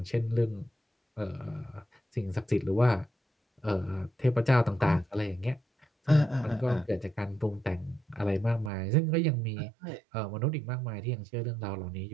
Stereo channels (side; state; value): left; drops out; at 8.7 s